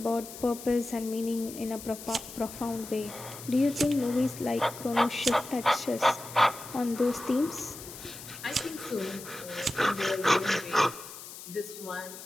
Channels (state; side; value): noise; left; hiss, 13 dB below the sound